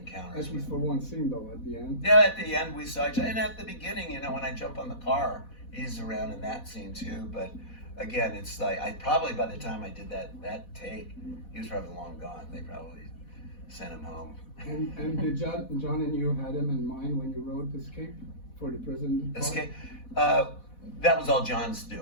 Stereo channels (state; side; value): late; right; 4.1 ms